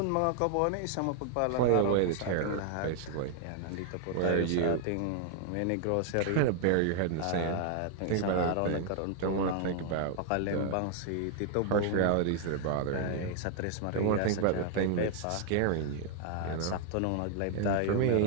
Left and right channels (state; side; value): different; both; correlation 0.00